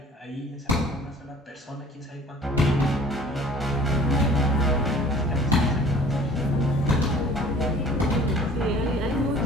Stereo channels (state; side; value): normal; both; correlation 0.50